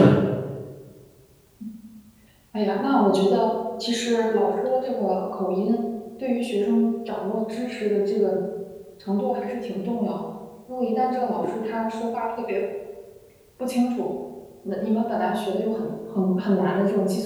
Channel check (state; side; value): identical; both; correlation 1.00